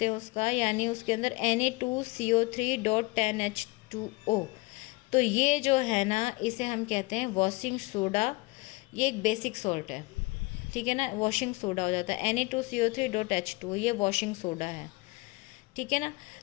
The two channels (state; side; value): quieter; right; 24.2 dB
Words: हैं उसका, यानी उसके अंदर Na2CO3.10H2O, तो ये जो है ना इसे हम कहते हैं वॉशिंग सोडा। ये एक बेसिक सॉल्ट है, ठीक है ना, वॉशिंग सोडा हो जाता है। Na2CO3.H2O ये वॉशिंग सोडा है, ठीक ठीक है ना।